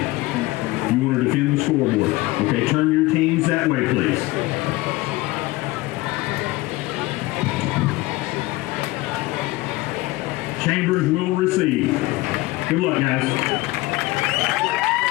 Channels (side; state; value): right; quieter; 20.2 dB